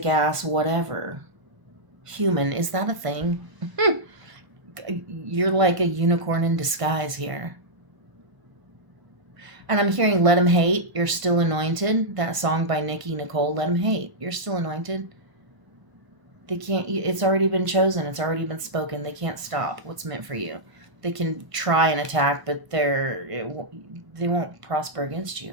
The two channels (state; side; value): late; left; 1.0 ms